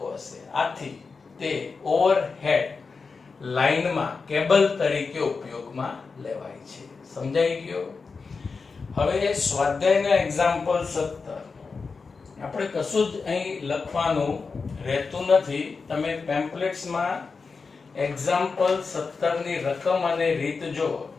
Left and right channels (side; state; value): right; quieter; 4.7 dB